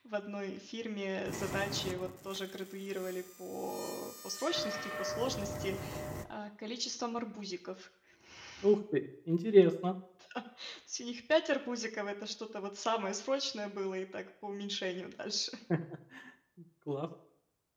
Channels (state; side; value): identical; both; correlation 1.00